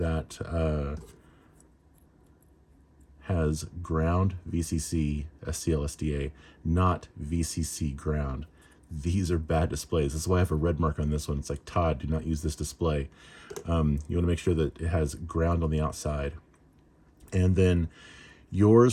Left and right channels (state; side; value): identical; both; correlation 1.00